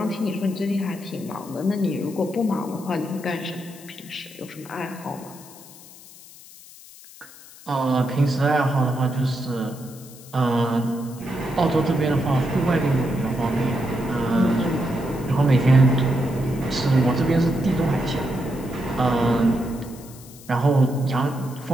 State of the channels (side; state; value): left; noise; hiss, 20 dB below the sound